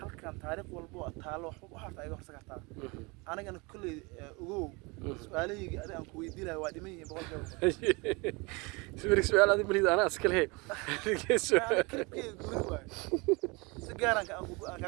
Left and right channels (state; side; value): quieter; left; 27.3 dB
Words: halkan taariikh walba oo taalo wax harta iga horsa kartaa anigana kulley ugow su'aalahayga adiga aan ku weydiinayo waa dhiman yihiin boqolkiiba su'aal adiga malid anaa iska lehe kilibkeyga gooni waayo si gaar aan